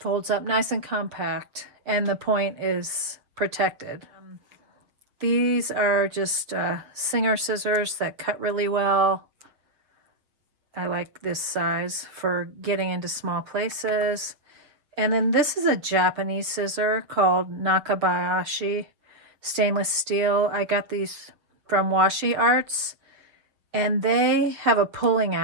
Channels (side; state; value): left; late; 7.1 ms